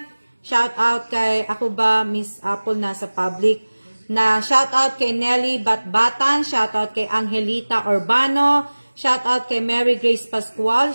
Shout out kay ako ba Miss Apple nasa public. Shout out kay Nelly Batbatan. Shout out kay Angelita Urbano. Shout out kay Mary Grace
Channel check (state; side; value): inverted; both; correlation -1.00